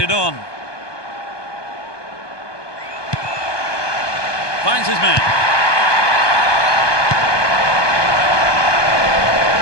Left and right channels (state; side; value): late; right; 1.2 ms